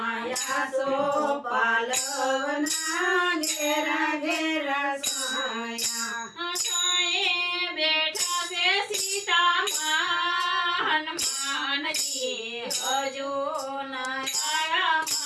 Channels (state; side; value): identical; both; correlation 1.00